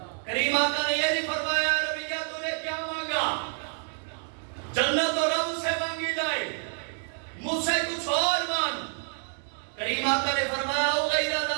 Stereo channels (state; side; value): silent; left; 59 dB below the other